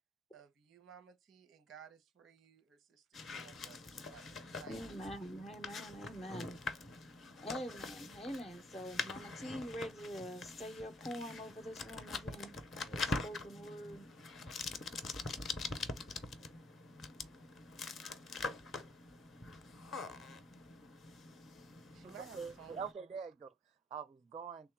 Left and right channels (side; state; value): both; normal; correlation 0.69